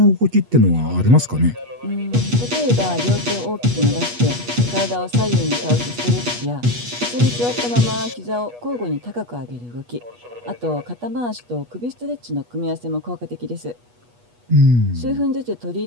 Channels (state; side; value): late; left; 8.3 ms